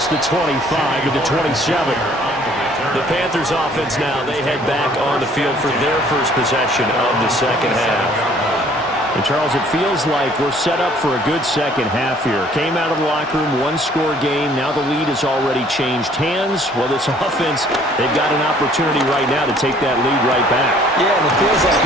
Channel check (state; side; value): normal; both; correlation 0.58